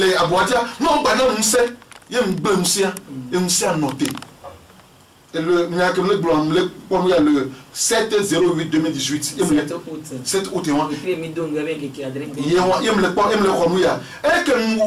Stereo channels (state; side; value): identical; both; correlation 1.00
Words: aboatia no gba na musa ye mgbe musa noté et le le 7/08/2018 7 août et me que